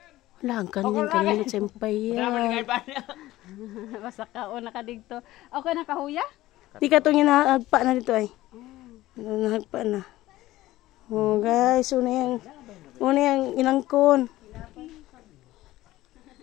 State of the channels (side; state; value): right; quieter; 16.4 dB